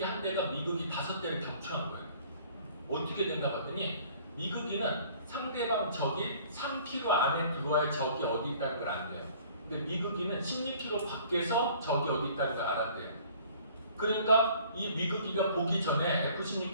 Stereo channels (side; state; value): both; inverted; correlation -0.53